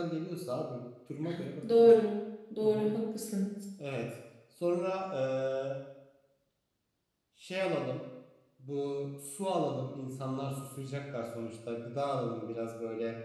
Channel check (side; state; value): both; identical; correlation 1.00